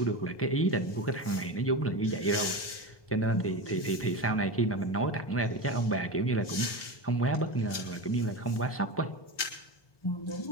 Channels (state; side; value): late; right; 1.2 ms